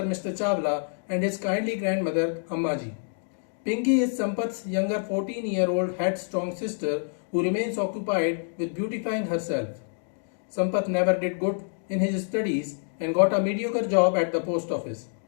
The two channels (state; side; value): silent; right; 60 dB below the other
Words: Mr. Chawla and his kindly grandmother Ammaji. Pinky is Sampath's younger 14-year-old headstrong sister who remains occupied with beautifying herself. Sampath never did good in his studies and got a mediocre job at the post office.